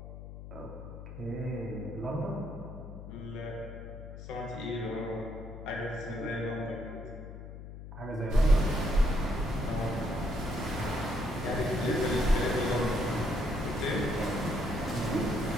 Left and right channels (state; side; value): noise; left; hum, 12 dB below the sound